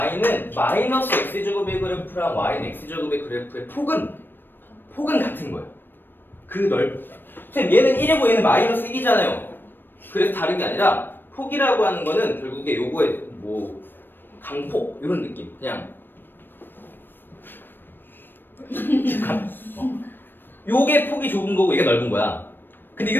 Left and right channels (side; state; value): right; late; 0.095 ms